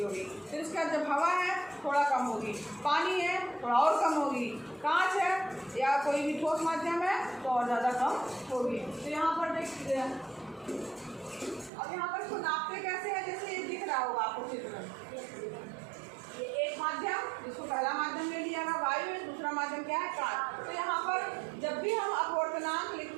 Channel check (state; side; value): drops out; left; at 11.7 s